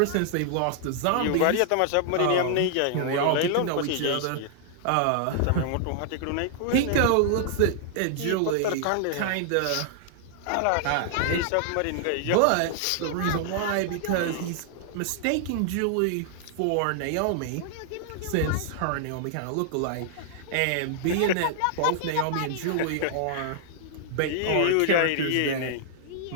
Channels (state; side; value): different; both; correlation -0.01